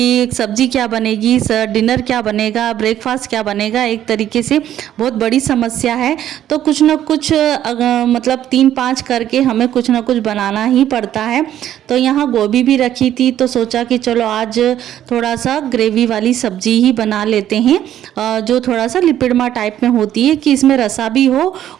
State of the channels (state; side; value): quieter; left; 11.5 dB